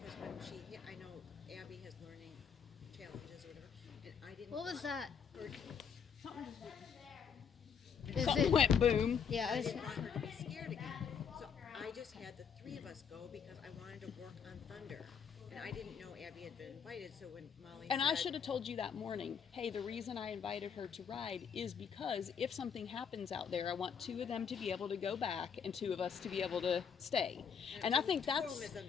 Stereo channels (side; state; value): right; quieter; 7.0 dB